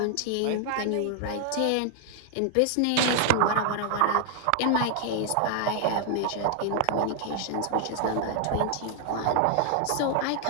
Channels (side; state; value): both; different; correlation 0.00